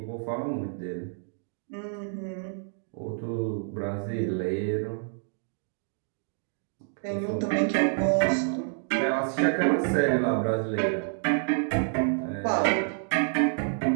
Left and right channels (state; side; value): silent; left; 59 dB below the other